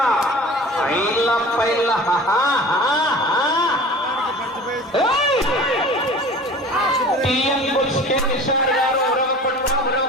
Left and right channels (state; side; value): normal; both; correlation 0.41